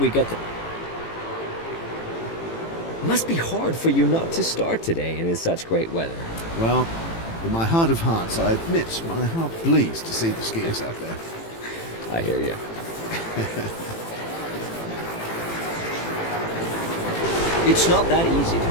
get the... Must be hard for you not to start today and in such great weather. Well, in my heart of hearts, I admit my heart bleeds to see the skiers out there. I hear you. It's not that easy to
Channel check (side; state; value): right; late; 18 ms